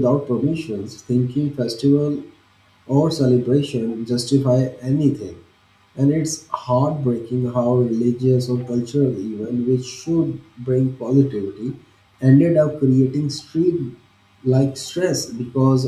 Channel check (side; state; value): both; identical; correlation 1.00